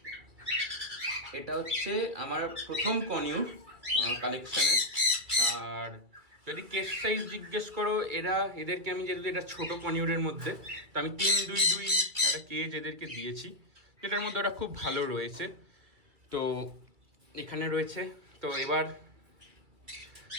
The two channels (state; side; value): late; left; 2.3 ms